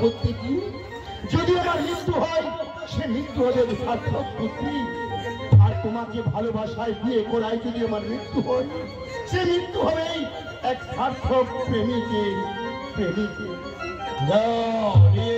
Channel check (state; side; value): identical; both; correlation 1.00